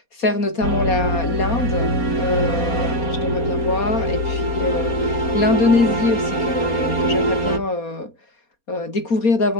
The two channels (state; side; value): late; right; 4.2 ms